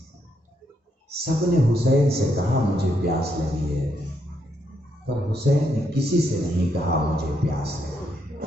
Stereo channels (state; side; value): normal; both; correlation 0.77